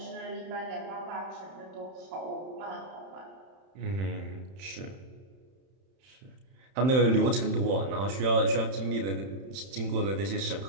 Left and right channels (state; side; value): late; left; 31 ms